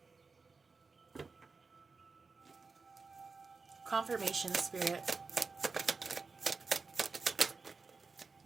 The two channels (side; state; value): left; quieter; 4.4 dB